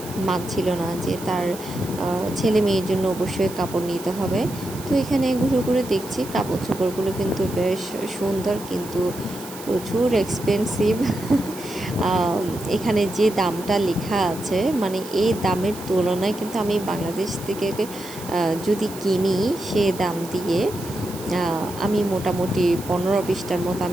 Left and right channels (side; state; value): right; noise; hiss, 15 dB below the sound